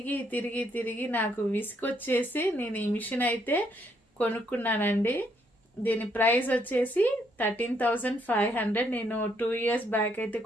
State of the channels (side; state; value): both; normal; correlation 0.72